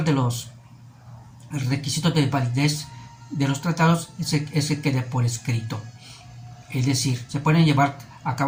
de los requisitos de validez de los tratados es que quede por escrito. Es decir, se pueden llevar a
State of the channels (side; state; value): both; identical; correlation 1.00